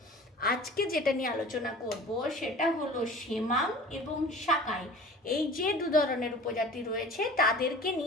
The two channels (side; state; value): both; normal; correlation 0.42